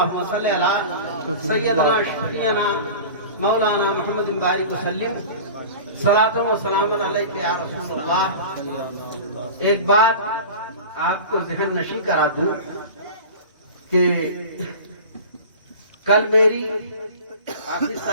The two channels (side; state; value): both; inverted; correlation -0.36